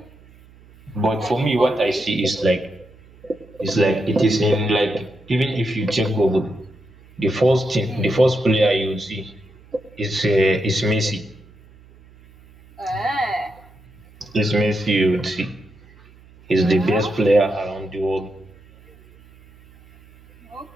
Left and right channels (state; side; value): noise; right; hum, 25 dB below the sound